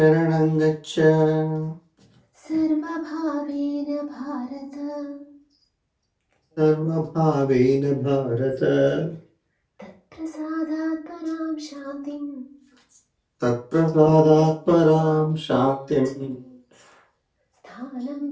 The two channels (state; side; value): identical; both; correlation 1.00